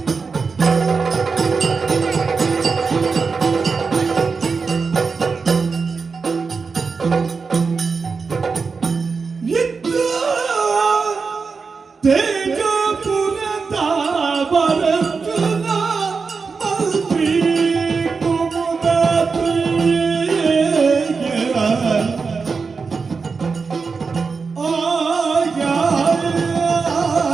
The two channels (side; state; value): left; quieter; 4.9 dB